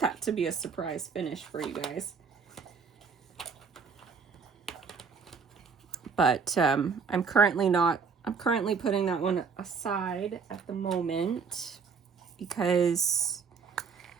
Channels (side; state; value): left; quieter; 5.6 dB